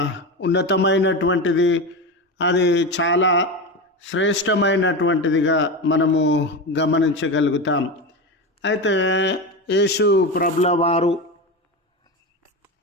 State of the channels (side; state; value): both; normal; correlation 0.20